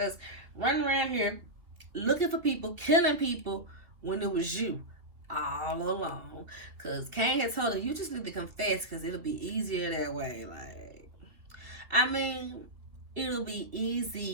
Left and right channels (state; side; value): late; left; 2.9 ms